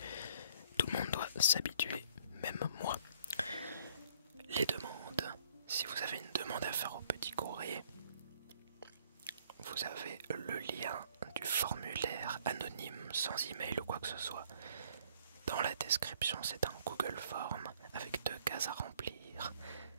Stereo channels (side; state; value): both; inverted; correlation -0.60